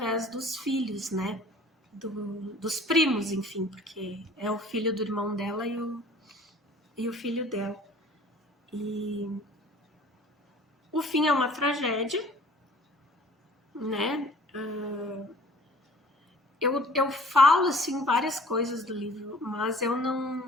dos filhos, né? Dos primos, enfim, porque é o filho do irmão dela e o filho dela. E o fim é uma tragédia, né? Eu falo, assim, várias coisas do livro, mas eu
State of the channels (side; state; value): both; normal; correlation 0.50